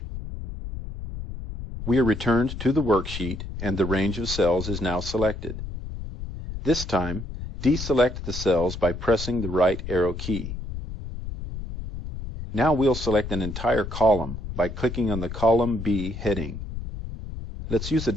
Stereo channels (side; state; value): left; noise; rumble, 8 dB below the sound